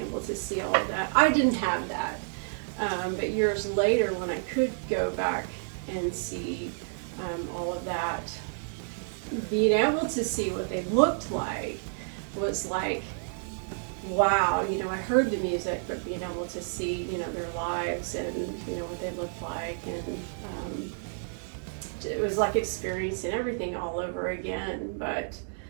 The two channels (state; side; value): silent; left; digital silence